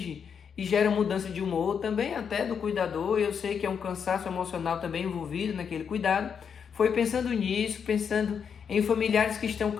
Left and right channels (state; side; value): quieter; right; 7.0 dB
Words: e gera mudança de humor, também até do cuidador. Eu sei que é um cansaço emocional também envolvido naquele cuidado. Foi pensando nisso, pensando em familiares que estão